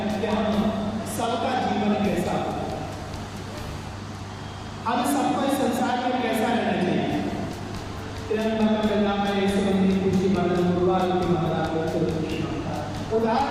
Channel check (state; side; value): identical; both; correlation 1.00